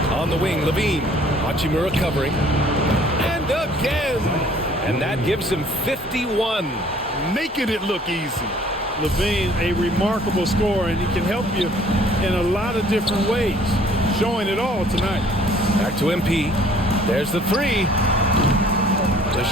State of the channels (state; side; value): normal; both; correlation 0.56